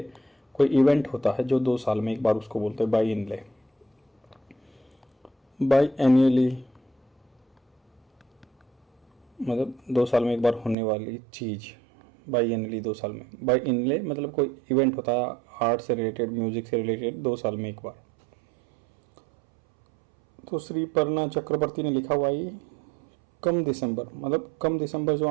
कोई इवेंट होता है जो 2 साल में एक बार, उसको बोलते हैं बाई इनले। बाई एनुअली मतलब 2 साल में एक बार होने वाली चीज़। बाई एनली 2 साल में, बाई इनले मतलब कोई इवेंट होता है आर्ट से रिलेटेड, म्यूजिक से रिलेटेड, 2 साल में एक बार। तो श्री पर्णा चक्रवर्ती ने लिखा हुआ ये कम दिसंबर, मतलब कम दिसंबर जो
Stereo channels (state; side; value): drops out; left; at 10.8 s